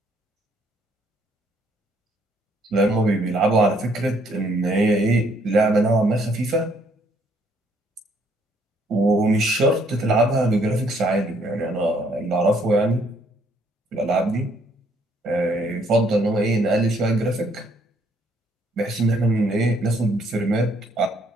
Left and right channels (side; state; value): both; normal; correlation 0.67